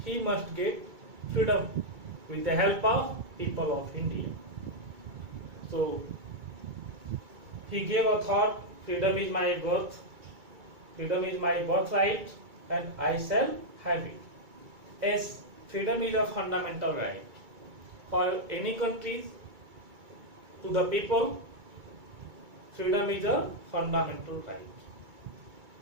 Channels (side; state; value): left; late; 2.3 ms